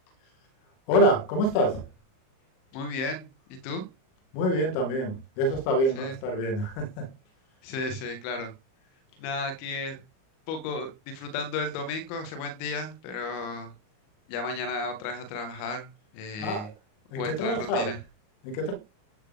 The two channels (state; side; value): late; right; 38 ms